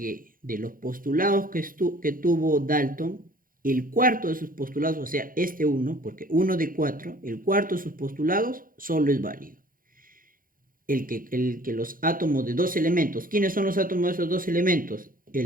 de los postulados que tuvo Dalton, el cuarto de sus postulados, o sea, este uno, porque uno de 4, el cuarto de sus postulados solo es válido. El que los átomos de dos elementos, ¿quiénes son los átomos de esos dos elementos?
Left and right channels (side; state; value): left; late; 0.41 ms